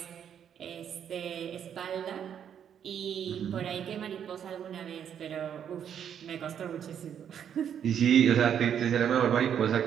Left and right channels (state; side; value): quieter; left; 8.7 dB